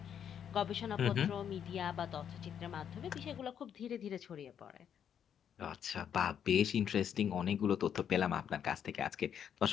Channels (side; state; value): right; quieter; 8.7 dB